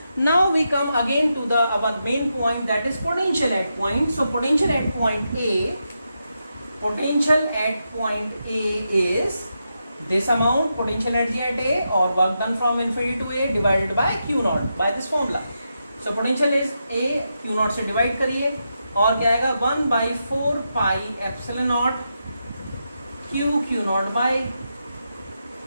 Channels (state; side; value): inverted; both; correlation -0.85